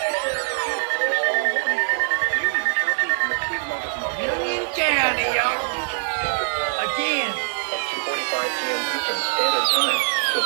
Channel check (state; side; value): silent; left; 60 dB below the other